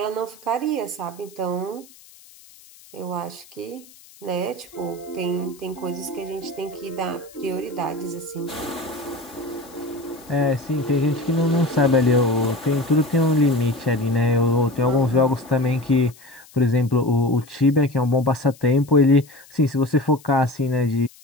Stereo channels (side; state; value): left; noise; hiss, 24 dB below the sound